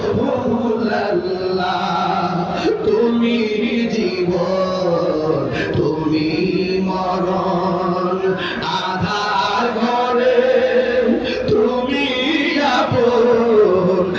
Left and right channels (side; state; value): both; identical; correlation 1.00